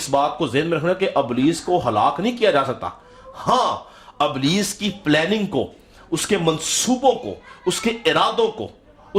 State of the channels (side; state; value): both; identical; correlation 1.00